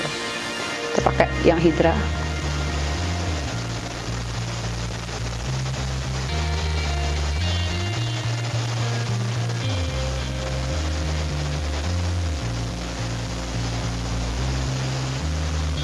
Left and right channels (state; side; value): identical; both; correlation 1.00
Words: loh. Kita pakai yang Hydra.